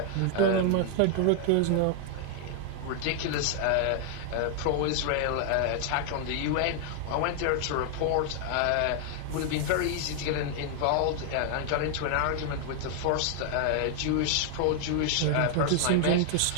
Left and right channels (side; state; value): both; different; correlation 0.00